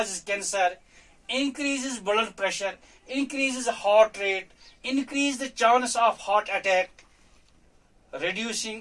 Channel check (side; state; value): both; identical; correlation 1.00